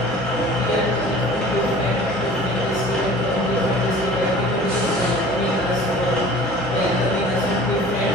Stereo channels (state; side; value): normal; both; correlation 0.45